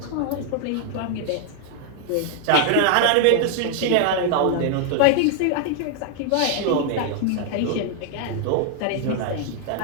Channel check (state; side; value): different; both; correlation 0.00